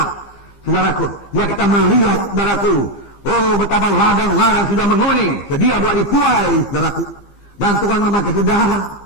saudaraku. Ya, kita melihat, saudaraku, betapa ladang-ladang sudah menguning, sedia buat dituai, saudaraku. Dan Tuhan memakai saudara.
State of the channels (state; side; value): late; right; 15 ms